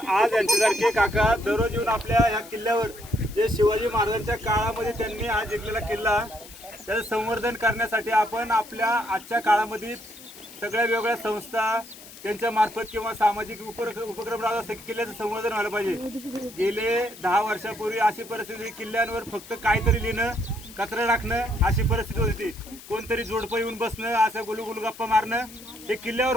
यांच्यासारखे काका दररोज येऊन आपल्या ह्या किल्ल्यावर जे शिवाजी महाराजांच्या काळामध्ये त्यांनी हा जिंकलेला किल्ला त्याचं संवर्धन करण्यासाठी आपण आपल्या आजच्या काळामध्ये सगळ्या वेगवेगळ्या संस्था त्यांच्या मार्फत किंवा सामाजिक उपक्रम राहत असते. किल्ल्याचं संवर्धन व्हायला पाहिजे. गेले 10 वर्षापूर्वी अशी परिस्थिती, किल्ल्यांवर फक्त काहीतरी लिहिणं, कचरा टाकणं अशी परिस्थिती होती. कोणतरी जोडपं येऊन बसणं, असं गुलगुल गप्पा मारणं हे किल्ल्यावर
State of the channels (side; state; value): left; noise; hiss, 18 dB below the sound